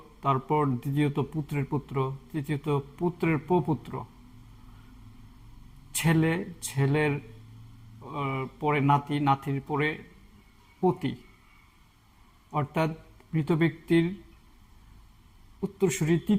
তারপর দ্বিতীয়ত পুত্রের পুত্র, তৃতীয়ত পুত্রের প্রপুত্র, ছেলে, ছেলের পরে নাতি, নাতির পরে পতি, অর্থাৎ মৃত ব্যক্তির উত্তরসূরি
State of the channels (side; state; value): both; identical; correlation 1.00